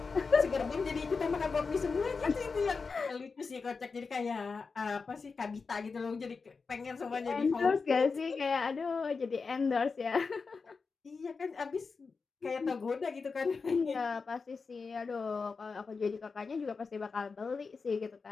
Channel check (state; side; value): quieter; right; 4.7 dB